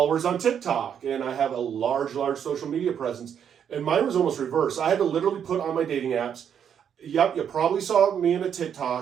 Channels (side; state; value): left; quieter; 8.4 dB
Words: on TikTok. And I have a large, large social media presence. And mine was almost reverse. I had to literally put on my dating apps, yep, you probably saw me in a